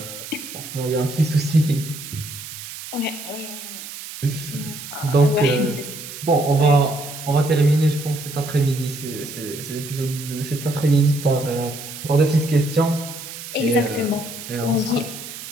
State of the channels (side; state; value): right; noise; hiss, 11 dB below the sound